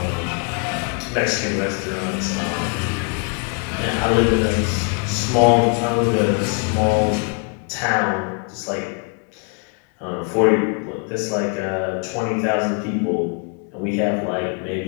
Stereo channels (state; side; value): quieter; right; 38.5 dB